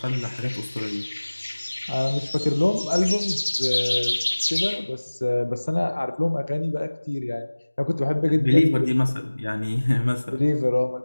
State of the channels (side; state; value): both; inverted; correlation -1.00